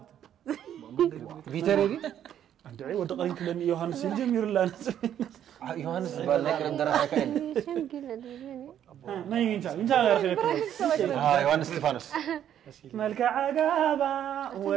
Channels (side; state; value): left; quieter; 10.2 dB